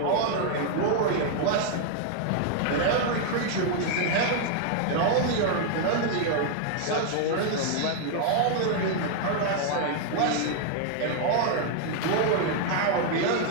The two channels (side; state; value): both; different; correlation 0.00